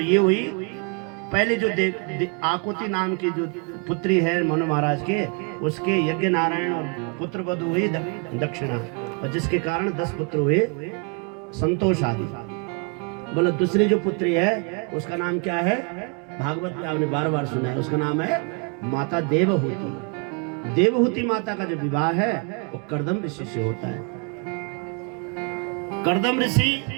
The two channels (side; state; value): left; quieter; 35.0 dB